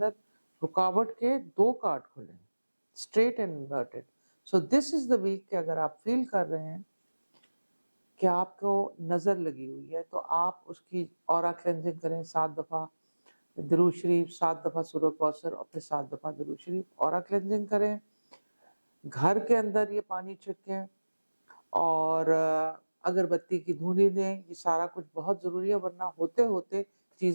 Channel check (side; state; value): both; inverted; correlation -1.00